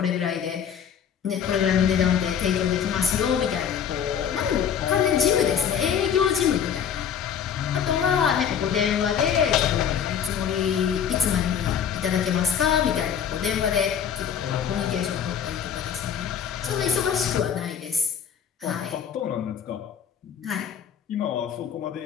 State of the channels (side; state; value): right; quieter; 8.1 dB